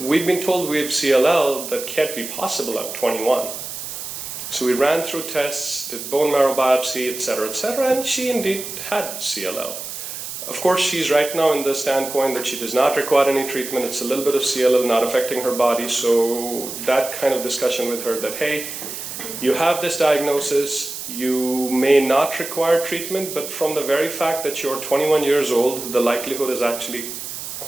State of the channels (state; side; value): noise; right; hiss, 8 dB below the sound